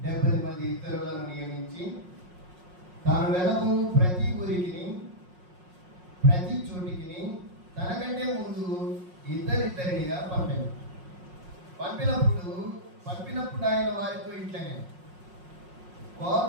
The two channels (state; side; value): late; left; 5.5 ms